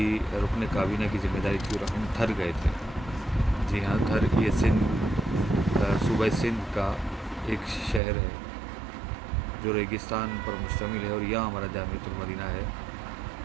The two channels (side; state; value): left; drops out; at 8.0 s